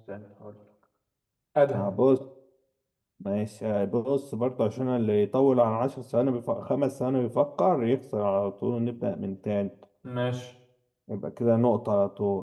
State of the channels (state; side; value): identical; both; correlation 1.00